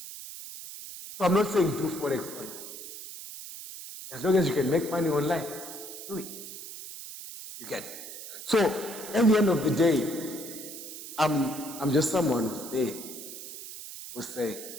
So I'm not saying do Forex online. As long as you can make money online, do it. You get it. So at the end of the day, I'm just someone who's there, who's saying,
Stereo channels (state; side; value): noise; right; hiss, 11 dB below the sound